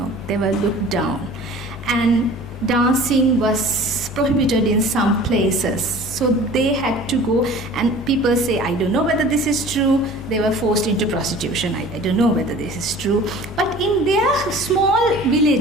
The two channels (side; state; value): both; normal; correlation 0.44